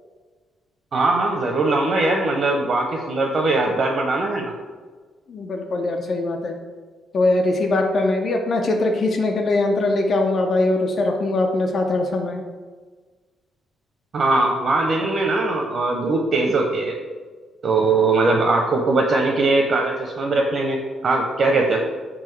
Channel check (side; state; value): both; normal; correlation 0.75